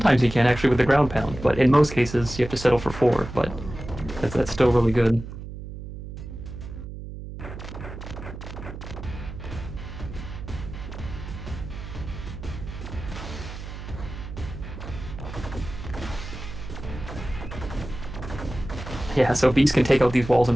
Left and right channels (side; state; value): right; noise; hum, 10 dB below the sound